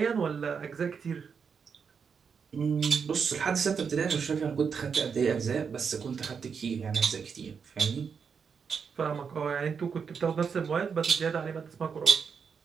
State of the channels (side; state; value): left; quieter; 6.2 dB